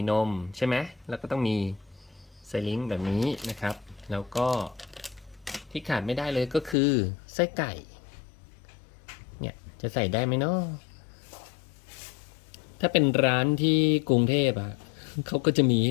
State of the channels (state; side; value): drops out; right; at 6.8 s